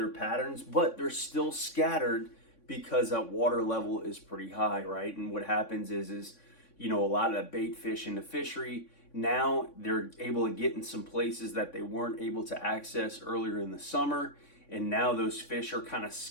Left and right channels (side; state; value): right; late; 3.6 ms